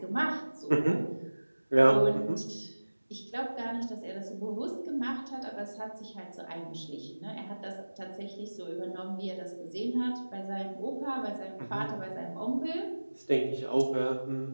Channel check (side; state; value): both; inverted; correlation -1.00